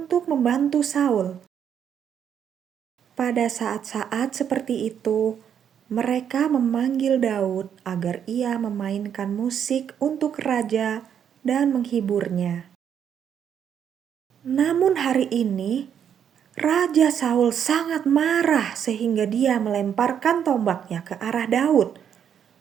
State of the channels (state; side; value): quieter; left; 8.6 dB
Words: membantu Saul. Pada saat-saat seperti itu, mereka memanggil Daud agar ia memainkan musik untuk raja dan menghiburnya. Namun hari ini, Raja Saul sangat marah sehingga dia melemparkan tombaknya ke arah Daud.